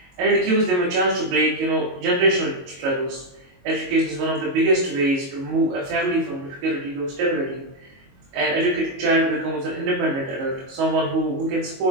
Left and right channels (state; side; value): late; left; 22 ms